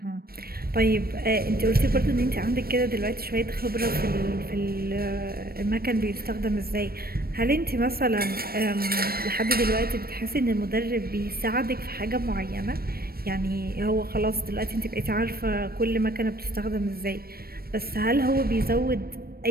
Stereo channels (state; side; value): late; left; 0.44 ms